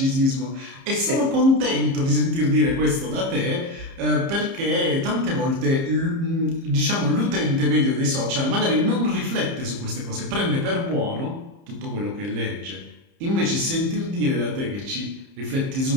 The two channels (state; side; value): late; left; 30 ms